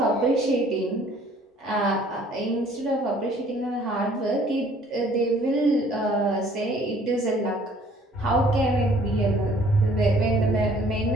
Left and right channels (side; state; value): both; normal; correlation 0.57